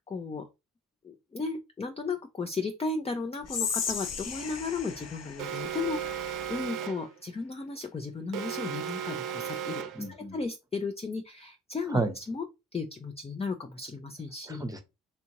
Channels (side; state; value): both; normal; correlation 0.50